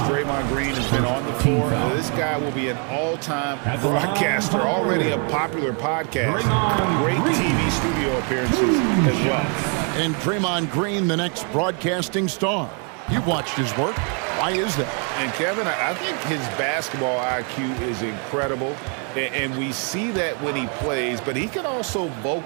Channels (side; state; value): left; quieter; 39.0 dB